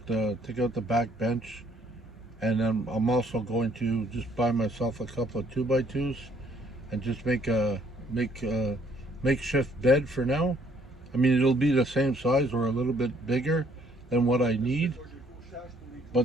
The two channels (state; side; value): normal; both; correlation 0.64